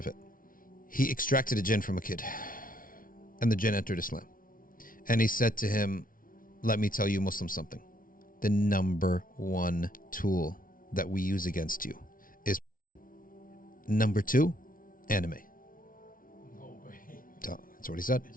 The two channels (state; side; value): late; right; 0.40 ms